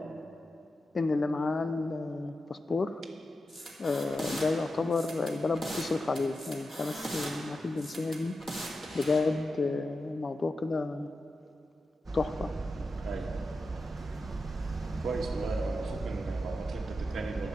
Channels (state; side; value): normal; both; correlation 0.90